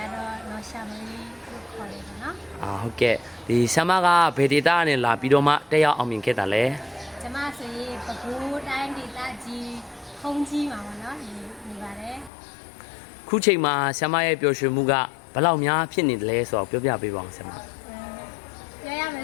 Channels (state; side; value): drops out; right; at 12.3 s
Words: တော့နော်ရှာမလေးလို့ခေါ်တယ်ပေါ့နော်ဟုတ်ကဲ့ဒီဆ iam မကဘယ်ဒေတာနဲ့လာပြီးတော့မှတက်ရောက်အောင်မြင်ခဲ့တာလဲကျမဆိုရင်ပဲခူးတိုင်းဒေသကြီးခုံးကြီးမှာပေါ့နော်နေပါတယ်ခုချိန်မှာဆ iam မရဲ့ပျော်ရွှင်မှုကဘယ်လောက်များဖြစ်နေတယ်လဲဆိုတော့ပြောပြပေးပါအောင်ဆ iam မပြောရမယ